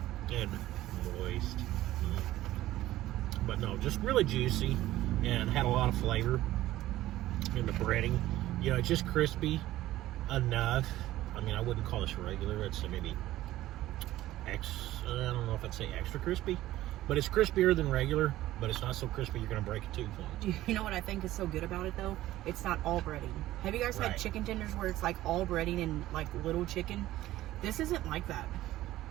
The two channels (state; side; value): quieter; left; 15.2 dB